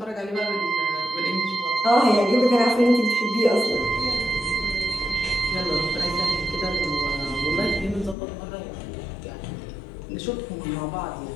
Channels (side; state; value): right; drops out; at 8.2 s